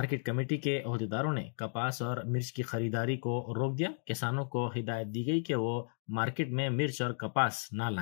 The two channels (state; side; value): silent; right; digital silence